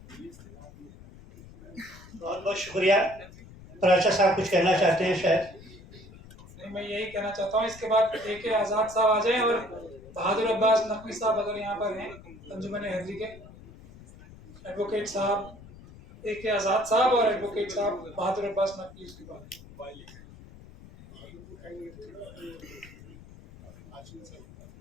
बहुत बहुत शुक्रिया। प्राचा साहब कुछ कहना चाहते हैं शायद। नहीं, मैं यही कहना चाहता हूँ, इसके बाद AK आज़ाद साहब आ जाएं और बहादुर अब्बास नकवी साहब अगर यहाँ पर हैं, अंजुमन हैदरी के एडवोकेट साहब AK आज़ाद साहब और एडवोकेट साहब बहादुर अब्बास नकवी उसके बाद।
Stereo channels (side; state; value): left; noise; rumble, 19 dB below the sound